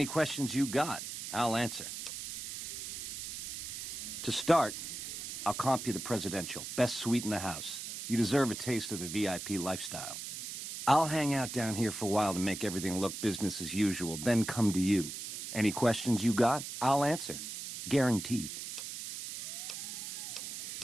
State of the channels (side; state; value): right; noise; hiss, 6 dB below the sound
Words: questions you got, I'll answer. To start, I'll comp you the presidential. Best suite in the house. You deserve a taste of the VIP lifestyle. I'll hang out down here for a while to make everything look business as usual, then come to you. Any questions you got, I'll answer. Guaranteed.